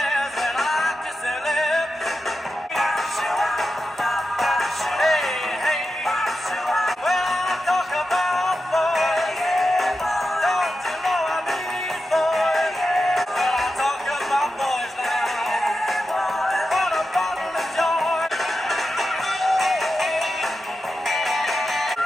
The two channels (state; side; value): normal; both; correlation 0.90